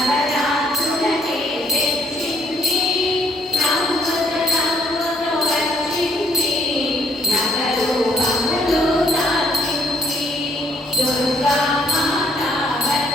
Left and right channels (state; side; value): normal; both; correlation 0.67